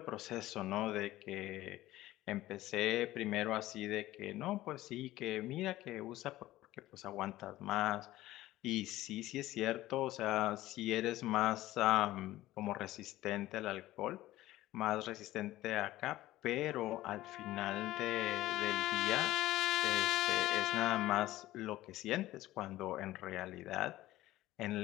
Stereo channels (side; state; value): right; quieter; 16.1 dB